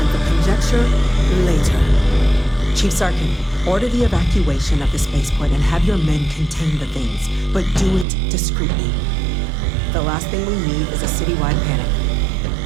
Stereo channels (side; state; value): left; drops out; at 8.1 s